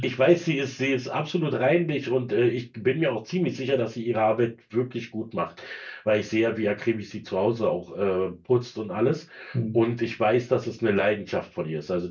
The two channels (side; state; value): both; identical; correlation 1.00